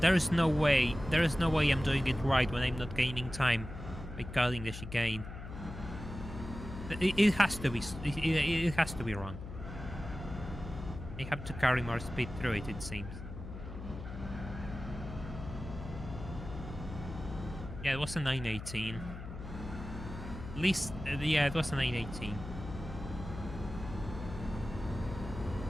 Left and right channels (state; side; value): noise; left; hum, 10 dB below the sound